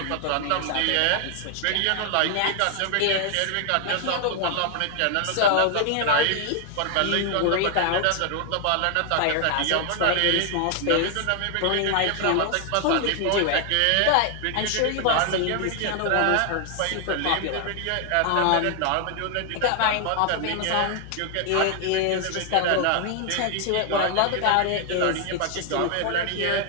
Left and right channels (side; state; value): both; different; correlation 0.00